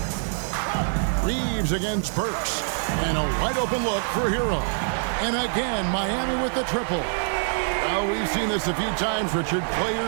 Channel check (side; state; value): left; silent; 62 dB below the other